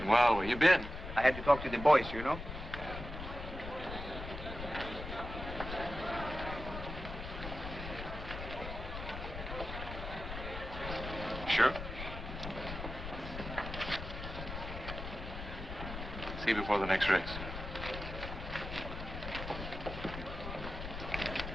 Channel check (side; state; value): left; noise; rumble, 8 dB below the sound